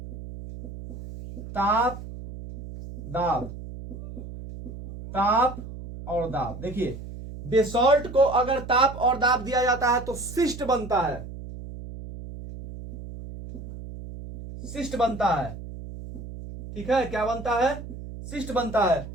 ताप दाब, ताप और दाब। देखिए, बेसॉल्ट को अगर ताप और दाब दिया जाता है तो शिस्ट बनता है, शिस्ट बनता है। ठीक है, क्या बनता है, शिस्ट बनता है।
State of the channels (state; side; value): noise; right; hum, 11 dB below the sound